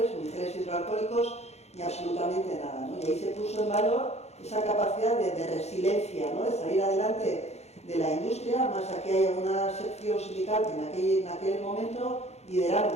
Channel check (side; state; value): right; late; 0.31 ms